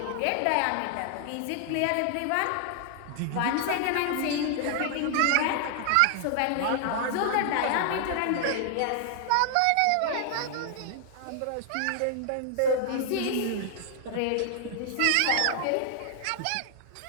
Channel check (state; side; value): different; both; correlation 0.00